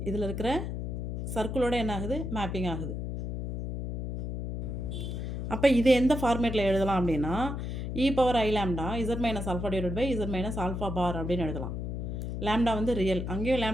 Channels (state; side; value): noise; left; hum, 4 dB below the sound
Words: இதில் இருக்கிற சர்க்கிளோட என்ன ஆகுது, மேப்பிங் ஆகுது. அப்போ இது எந்த ஃபார்மேட்டில் எழுதலாம் அப்படின்னா e power I lambda Z minus alpha divide by z minus alpha bar அப்படின்னு எழுதலாம். லேம்டா வந்து ரியல், அங்கேயும்